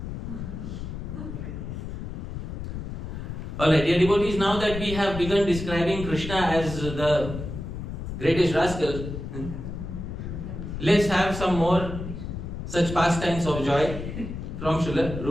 Alright, dear devotees, now that we have begun describing Krishna as the greatest rascal, let's have some more such pastimes of joy from Srila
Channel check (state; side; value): noise; left; rumble, 7 dB below the sound